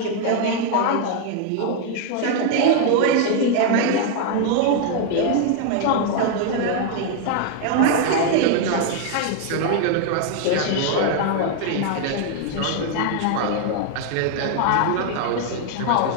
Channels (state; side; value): different; both; correlation 0.00